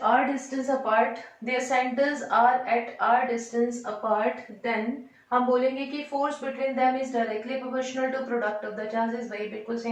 r distance apart, their centers are at r distance apart, then हम बोलेंगे कि force between them is directly proportional to product of the charges, वही बिल्कुल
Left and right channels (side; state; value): both; identical; correlation 1.00